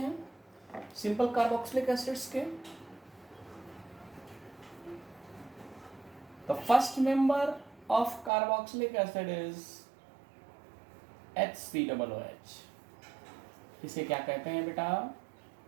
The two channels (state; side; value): drops out; left; at 8.3 s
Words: सिंपल कार्बोक्सिलिक एसिड्स के। The first member of carboxylic acid is HCOOH। इसे क्या कहते हैं बेटा?